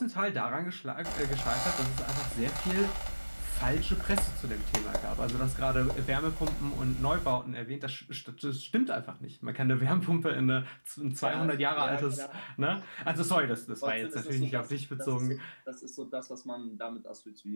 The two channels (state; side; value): inverted; both; correlation -1.00